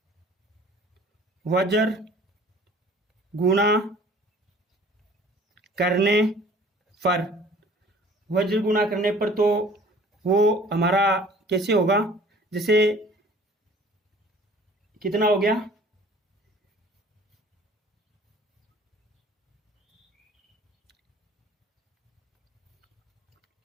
वज्र गुणा करने पर, वज्र गुणा करने पर तो वो हमारा कैसे होगा, जैसे कितना हो गया,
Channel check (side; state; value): both; normal; correlation 0.51